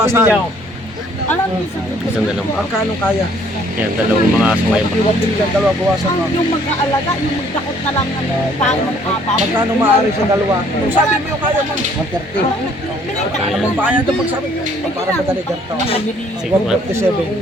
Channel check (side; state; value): both; normal; correlation 0.61